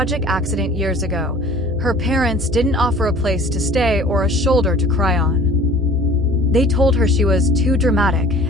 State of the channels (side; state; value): left; noise; rumble, 26 dB below the sound